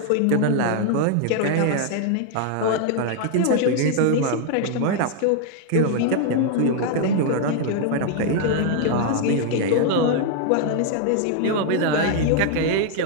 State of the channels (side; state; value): both; different; correlation 0.00